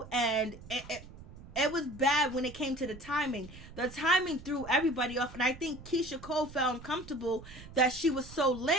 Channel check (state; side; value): noise; right; rumble, 17 dB below the sound